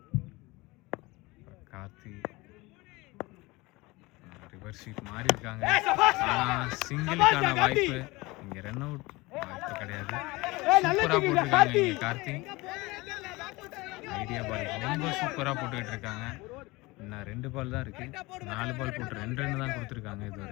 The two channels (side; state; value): right; quieter; 22.5 dB